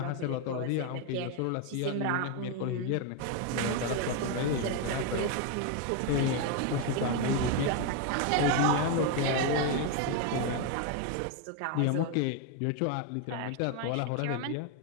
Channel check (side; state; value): both; different; correlation 0.01